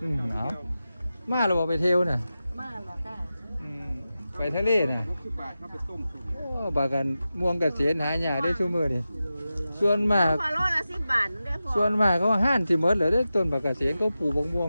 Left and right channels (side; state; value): both; inverted; correlation -0.93